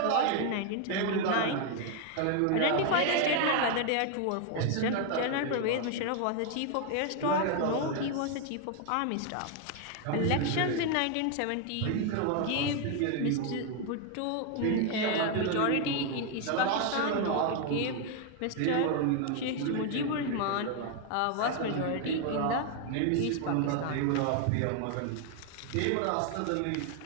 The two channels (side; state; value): both; different; correlation 0.00